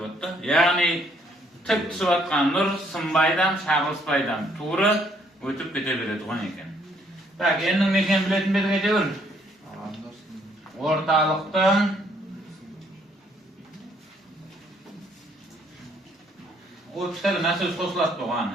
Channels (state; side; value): normal; both; correlation 0.67